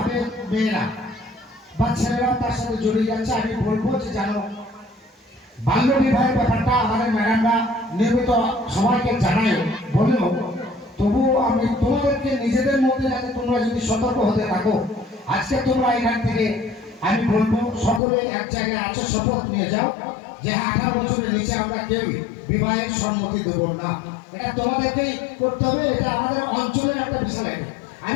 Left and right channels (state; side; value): drops out; right; at 18.0 s